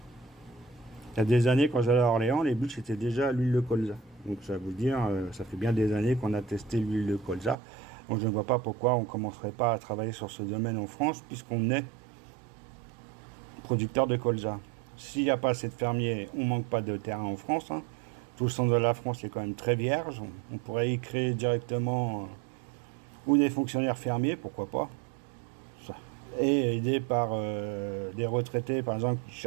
y a des années, quand j'allais à Orléans, les bûches c'était déjà l'huile de colza. Donc, ça veut dire, ça fait bien des années qu'on a testé l'huile de colza. Donc, je ne vois pas pourquoi on ne commencerait pas à travailler sur ce domaine en France, puisqu'on est producteur de colza. S'il n'y a pas assez de fermiers, on ne manque pas de terrain en France, hein. Tout le centre de la France est quand même très vierge. On pourrait y créer directement ou des fonctionnaires fermiers, pourquoi pas, et aidé par des retraités, par exemple, qui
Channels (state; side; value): drops out; left; at 7.6 s